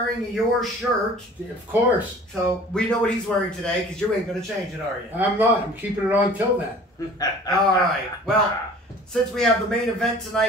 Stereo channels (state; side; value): normal; both; correlation 0.46